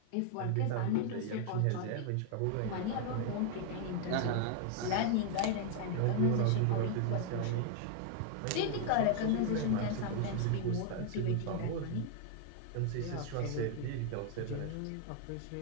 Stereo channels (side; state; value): both; different; correlation 0.00